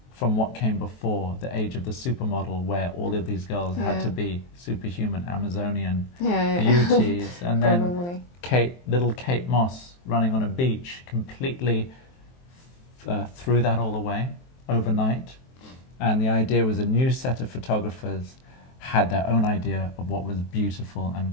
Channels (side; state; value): right; late; 23 ms